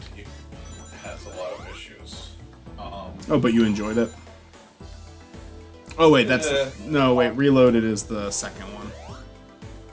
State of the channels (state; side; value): identical; both; correlation 1.00